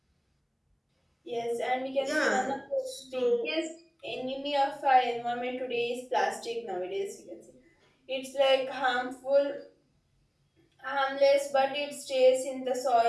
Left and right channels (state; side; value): identical; both; correlation 1.00